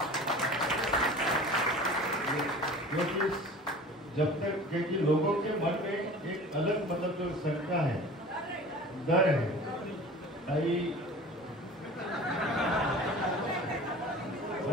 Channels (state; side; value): normal; both; correlation 0.41